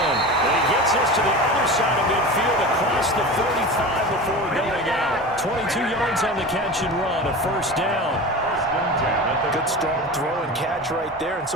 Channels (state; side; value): normal; both; correlation 0.31